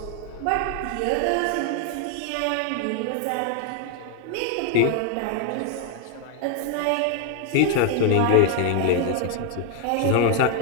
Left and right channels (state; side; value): different; both; correlation 0.00